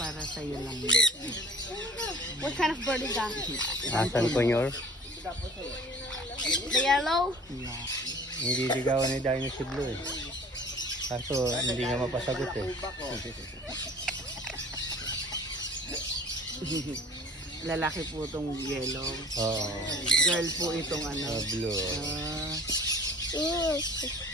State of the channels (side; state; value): both; normal; correlation 0.46